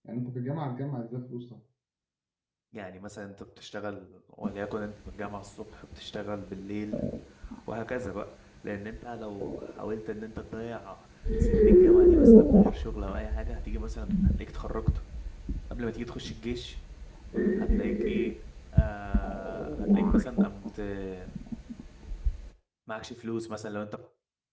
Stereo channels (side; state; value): both; identical; correlation 1.00